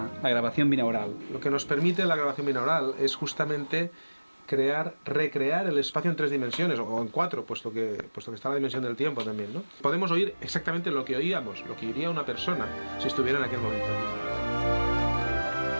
grabación binaural. Lo que nos permite la grabación binaural es justamente recrear el espacio en 3 dimensiones, o en 4, puesto que está la dimensión del tiempo también, ¿no? Podemos oír exactamente lo que oíamos, lo que oiría una persona si estuviera en aquel momento.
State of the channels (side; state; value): both; inverted; correlation -1.00